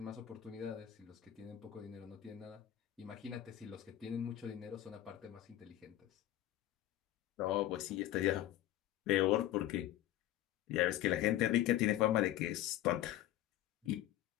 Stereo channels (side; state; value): right; quieter; 13.6 dB